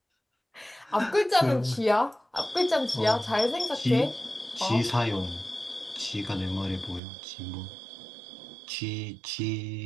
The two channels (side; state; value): left; drops out; at 7.0 s